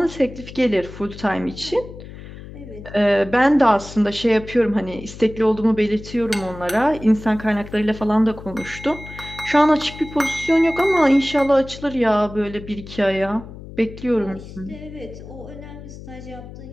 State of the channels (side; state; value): left; noise; hum, 14 dB below the sound